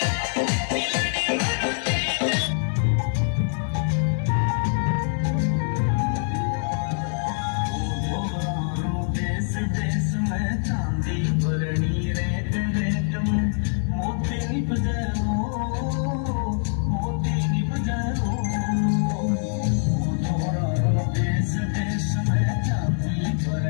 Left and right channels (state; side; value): silent; right; 62 dB below the other